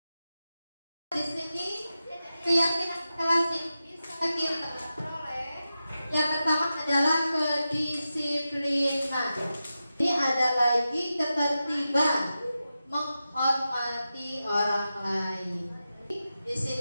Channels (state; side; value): inverted; both; correlation -0.91